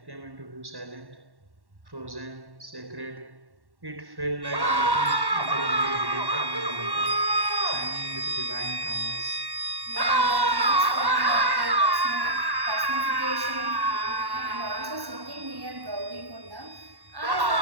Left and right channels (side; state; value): left; late; 1.1 ms